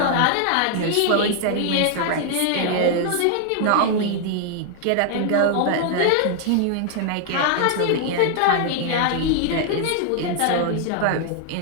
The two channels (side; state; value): both; different; correlation 0.00